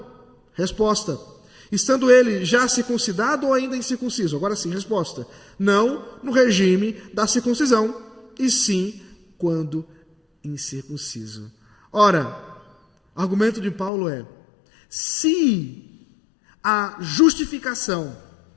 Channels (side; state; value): right; drops out; at 13.9 s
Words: Resposta: estando ele já circuncidado ou ainda incircunciso? Agora sim, resposta: não no regime da circuncisão, e sim quando incircunciso. Ora, o argumento de Paulo é: se a justificação,